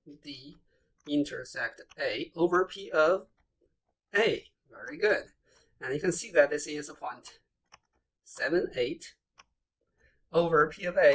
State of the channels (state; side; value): identical; both; correlation 1.00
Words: D intersect A over P of A. Very good. And you can see that this is a 0.78 over P of